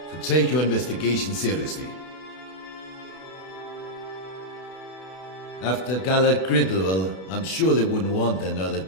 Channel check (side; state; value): right; late; 32 ms